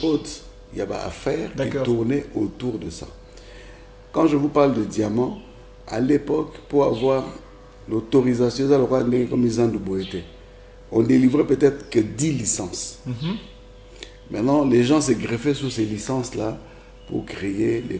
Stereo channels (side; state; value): both; identical; correlation 1.00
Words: il y avait affaires qui tournaient autour de ça. Quand je vous parle de diamants, à l'époque, pour avoir l'autorisation, comme ils ont on délivrait peut-être que 10 licences. Maintenant, les gens se greffaient sur ces licences-là pour créer les